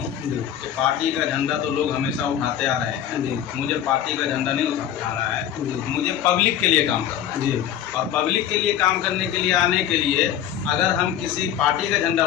कि पार्टी का झंडा तो लोग हमेशा उठाते आ रहे हैं, मुझे पार्टी का झंडा नहीं उठाना है, मुझे पब्लिक के लिए काम करना है जी। और पब्लिक के लिए काम करने के लिए आने के लिए अगर हम किसी पार्टी का झंडा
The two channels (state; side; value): quieter; right; 10.3 dB